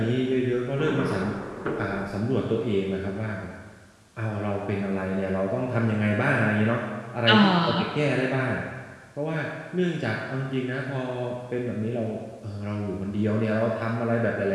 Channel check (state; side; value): identical; both; correlation 1.00